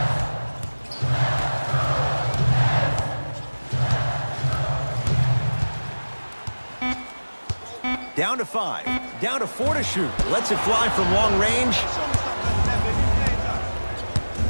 Down to 5. Down to 4 to shoot. Lets it fly from long range.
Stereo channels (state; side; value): inverted; both; correlation -1.00